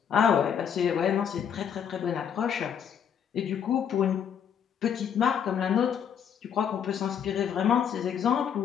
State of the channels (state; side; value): quieter; right; 8.2 dB